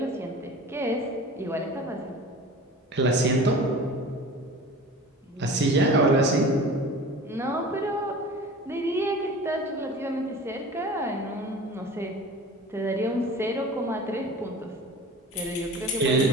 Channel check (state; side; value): normal; both; correlation 0.39